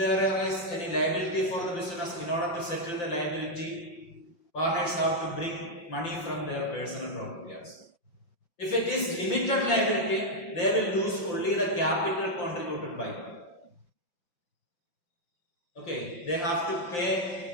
is any liability for the business, in order to settle the liability, partners have to bring money from their personal property also. If it is limited liability, they will lose only the capital contributed by them. Okay, they have to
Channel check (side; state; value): right; late; 5.6 ms